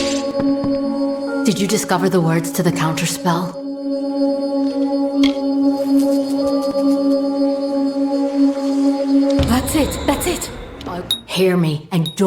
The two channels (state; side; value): identical; both; correlation 1.00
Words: Did you discover the words to the counterspell? That's it. Hear me, and